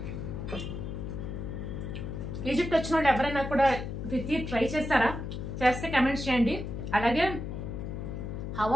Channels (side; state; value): left; noise; hum, 5 dB below the sound